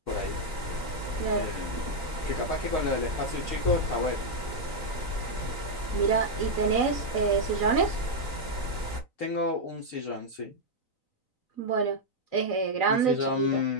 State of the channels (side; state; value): right; late; 3.9 ms